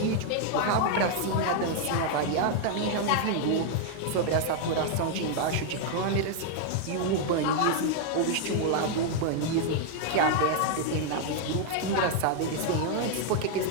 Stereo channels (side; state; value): both; different; correlation 0.00